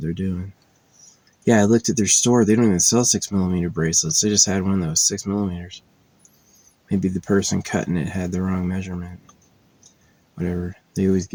they're doing. Yeah, I looked at their store. They don't even sell 6mm bracelets. They just had one that was 6mm. Maybe the person cutting it had the wrong measurement. Whatever. They always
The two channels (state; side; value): identical; both; correlation 1.00